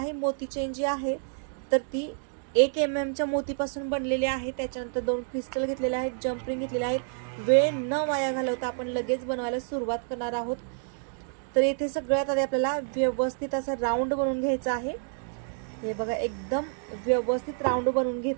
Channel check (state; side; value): silent; left; digital silence